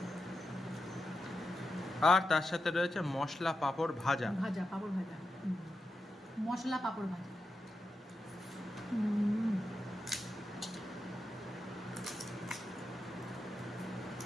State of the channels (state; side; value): normal; both; correlation 0.88